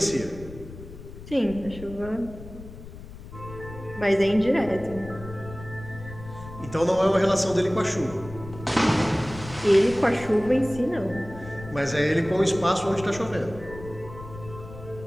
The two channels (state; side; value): noise; left; rumble, 14 dB below the sound